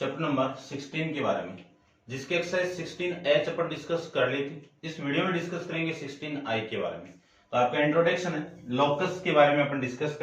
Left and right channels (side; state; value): both; identical; correlation 1.00